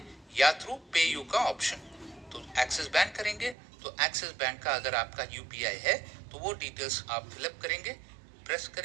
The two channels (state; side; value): drops out; left; at 3.6 s